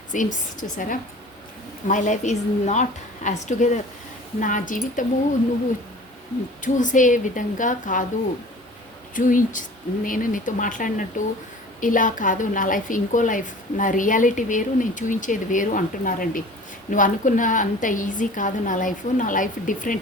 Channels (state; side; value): normal; both; correlation 0.44